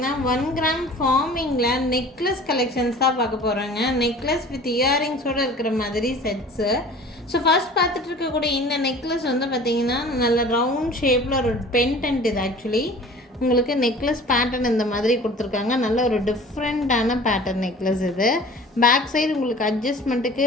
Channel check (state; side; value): normal; both; correlation 0.44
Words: 1 கிராம் ஃபார்மிங்கில் நெக்லஸ் கலெக்ஷன்ஸ் தான் பார்க்க போகிறோங்க. நெக்லஸ் வித் இயரிங்ஸோடு இருக்கிற மாதிரி செட்ஸு. ஸோ ஃபர்ஸ்ட் பார்த்துட்டு இருக்கக்கூடிய இந்த நெக்லஸ் வந்து பார்த்திங்கன்னா நல்ல ரவுண்ட் ஷேப்பில் ஒரு பென்டென்ட். இது ஆக்சுவலி உங்களுக்கு நெக்லஸ் பேட்டர்ன் இந்த மாதிரி கொடுத்துருக்காங்க. நல்ல ஒரு டிஃப்ரெண்ட்டான பேட்டர்ன் நெக்லஸ் இது. பேக் சைடு உங்களுக்கு அட்ஜஸ்ட்மெண்ட்டுக்கு